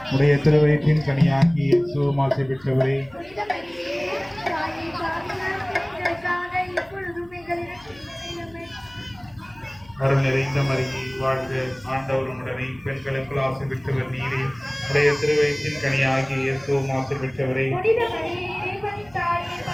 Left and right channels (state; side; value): noise; left; hum, 26 dB below the sound